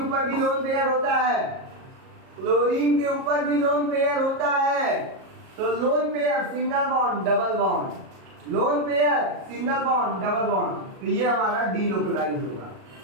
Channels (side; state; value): left; late; 37 ms